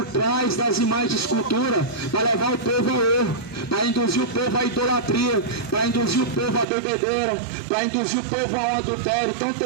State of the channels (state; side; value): drops out; left; at 6.7 s